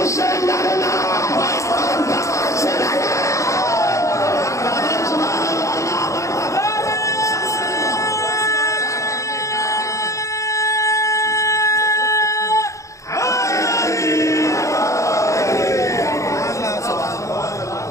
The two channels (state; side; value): late; right; 0.15 ms